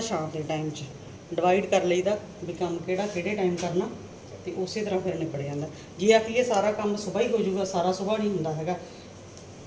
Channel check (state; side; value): identical; both; correlation 1.00